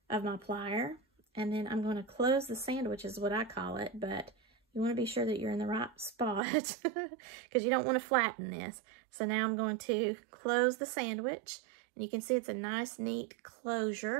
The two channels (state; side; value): drops out; left; at 6.4 s